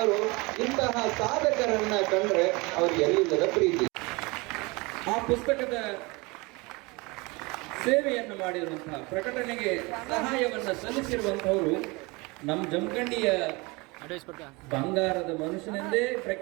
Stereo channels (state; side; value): quieter; left; 25.7 dB